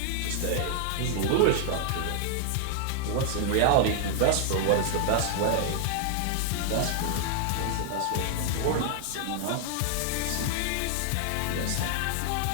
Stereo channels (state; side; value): different; both; correlation 0.00